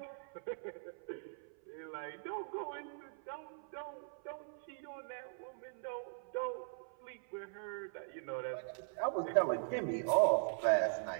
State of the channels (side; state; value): left; silent; 51 dB below the other